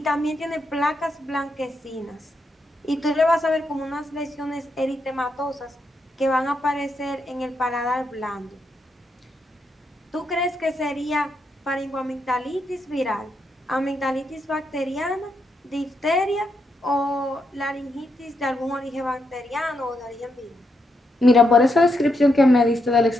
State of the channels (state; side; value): normal; both; correlation 0.81